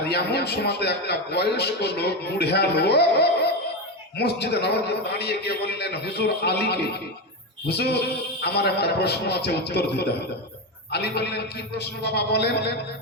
এমন সময় একটা বয়স্ক লোক, বুড়া লোক মসজিদে নববীতে দাঁড়িয়ে গিয়ে বললেন, হুজুর আলীকে, হুজুর আমার একটা প্রশ্ন আছে, উত্তর দিতে হবে। আলী বললেন, কি প্রশ্ন বাবা বলেন,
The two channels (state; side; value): normal; both; correlation 0.14